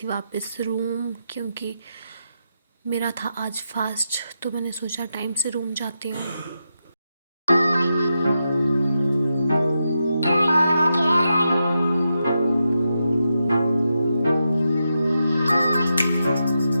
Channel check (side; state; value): both; inverted; correlation -0.86